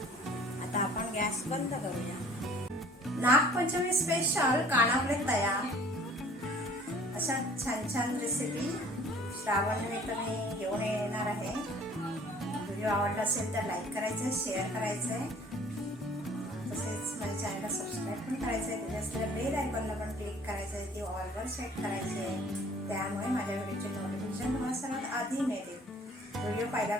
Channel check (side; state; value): both; normal; correlation 0.52